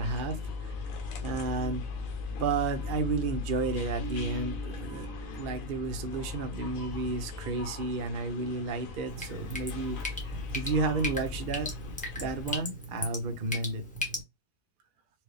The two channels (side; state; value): both; normal; correlation 0.00